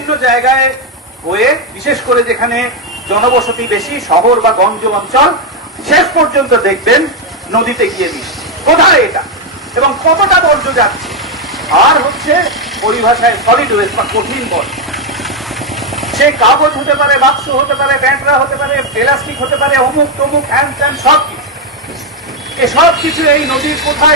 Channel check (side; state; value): both; normal; correlation 0.04